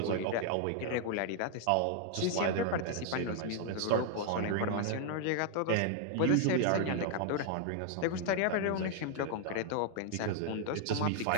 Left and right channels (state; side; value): different; both; correlation 0.00